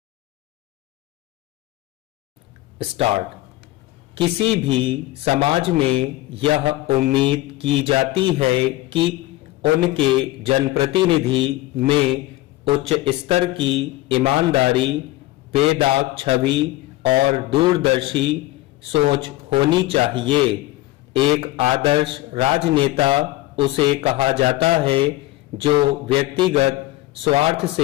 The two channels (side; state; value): right; quieter; 17.4 dB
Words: स्टार्ट। किसी भी समाज में यह उम्मीद की जाती है कि उनके जनप्रतिनिधि में उच्च स्तर की ईमानदारी, बेदाग छवि और दूरदर्शी सोच होनी चाहिए। एक आदर्श राजनेता उसे कहा जाता है जो व्यक्तिगत स्वार्थ